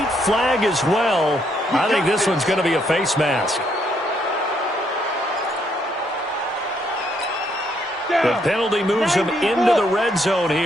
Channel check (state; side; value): normal; both; correlation 0.72